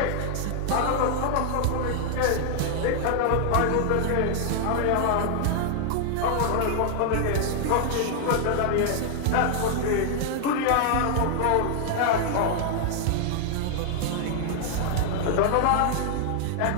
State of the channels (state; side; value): different; both; correlation 0.00